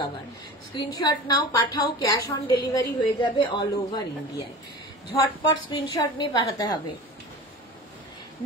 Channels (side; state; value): both; normal; correlation 0.35